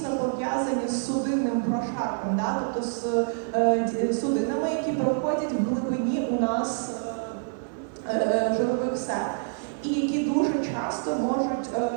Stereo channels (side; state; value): left; silent; 60 dB below the other